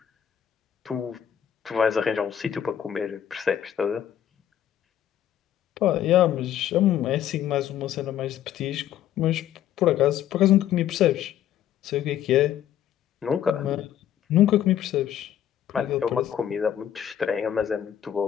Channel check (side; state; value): right; quieter; 10.5 dB